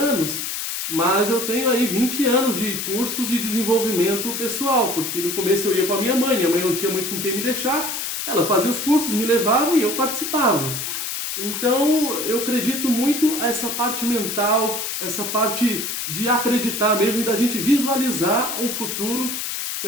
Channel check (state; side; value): noise; left; hiss, 4 dB below the sound